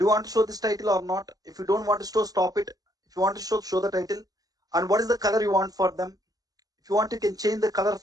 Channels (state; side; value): late; left; 0.18 ms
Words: you want to show this title or not? If you don't want to show, stop it. If you want to show the title. And what is the color you want for them? If you want, you can change the color